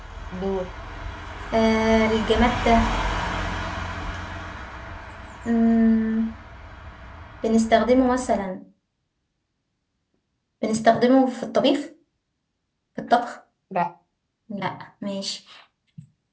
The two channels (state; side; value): identical; both; correlation 1.00